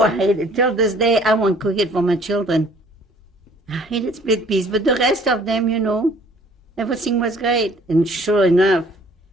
I hate it. Till this day, I won't cook it for my children. I hated split peas, but the rest of them, everything was great. And sure enough,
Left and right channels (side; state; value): both; normal; correlation 0.56